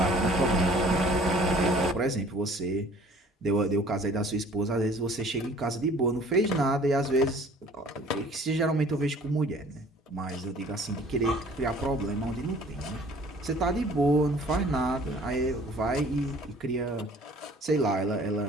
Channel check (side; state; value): both; normal; correlation 0.52